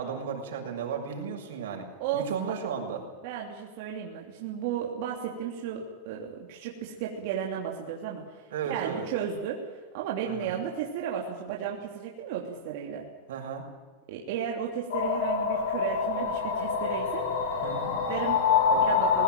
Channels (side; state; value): both; normal; correlation -0.16